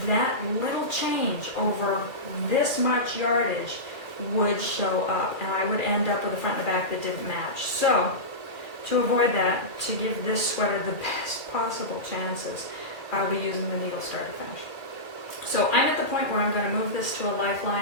that little change over this much yardage would show up, and I would end up with a front and a back that didn't match. So, to avoid that, to give this sweater the best possible chances, I'll be using the needle start to finish. So I'm at the point where I'm going to move this to a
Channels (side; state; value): right; late; 2.5 ms